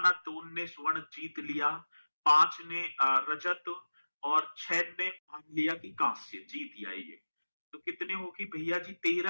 2 ने स्वर्ण जीत लिया, 5 ने रजत, और 6 ने मान लिया कि कांस्य जीत आएंगे। तो कितने हो गए भैया जी?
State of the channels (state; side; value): inverted; both; correlation -1.00